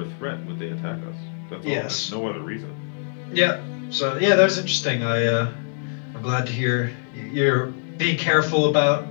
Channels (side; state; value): right; silent; digital silence